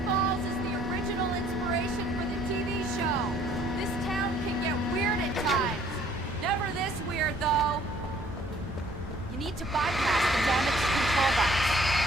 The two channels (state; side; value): normal; both; correlation 0.59